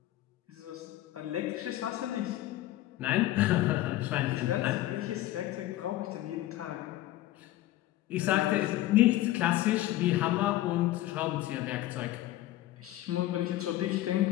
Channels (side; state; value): right; quieter; 15.3 dB